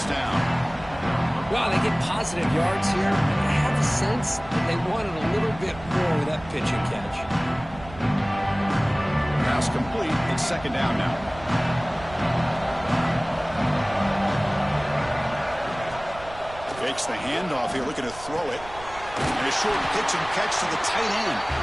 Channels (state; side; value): noise; right; rumble, 17 dB below the sound